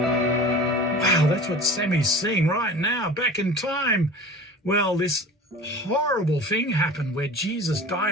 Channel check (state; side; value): normal; both; correlation 0.39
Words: Wow, that's what Sammy's seeing right now, back in time. Well, this horrible thing happened where Jesus